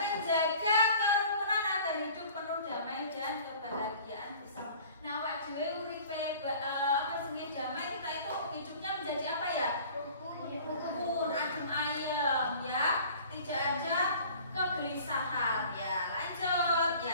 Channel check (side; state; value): both; inverted; correlation -0.47